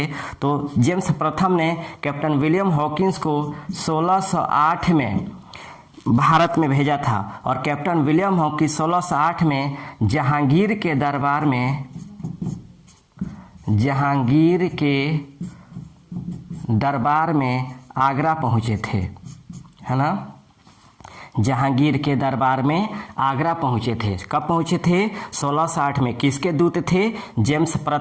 तो जेम्स प्रथम ने कैप्टन विलियम हॉकिंस को 1608 में भारत में भेजा था और कैप्टन विलियम हॉकिंस 1608 में जहांगीर के दरबार में आगरा पहुँचे थे, है ना। जहांगीर के दरबार में आगरा पहुँचे थे। कब पहुँचे थे? 1608 में। किसके दूत थे? जेम्स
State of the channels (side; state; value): both; identical; correlation 1.00